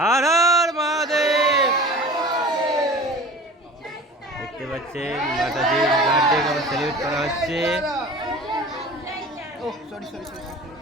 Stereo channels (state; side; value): normal; both; correlation 0.39